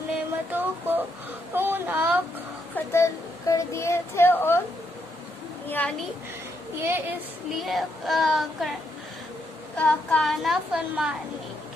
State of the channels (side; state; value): both; normal; correlation 0.77